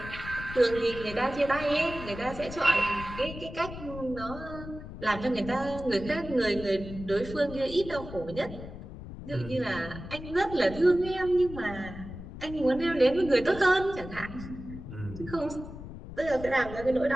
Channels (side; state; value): left; noise; rumble, 11 dB below the sound